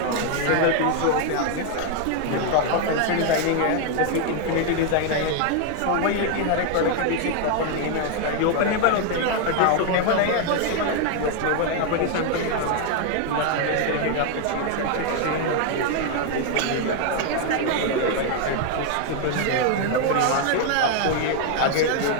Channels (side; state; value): both; different; correlation 0.00